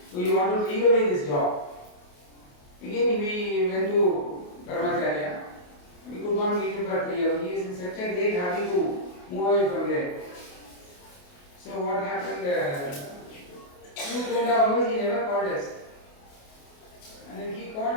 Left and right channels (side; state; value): right; late; 28 ms